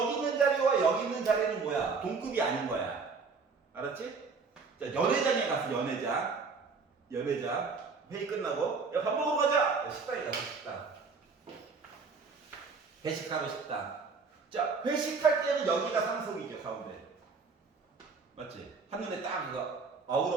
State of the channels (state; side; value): quieter; left; 4.8 dB